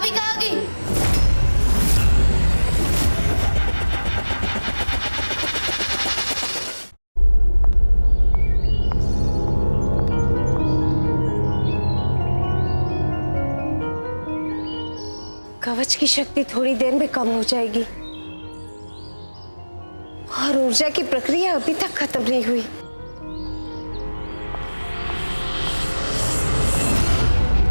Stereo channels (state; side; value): inverted; both; correlation -1.00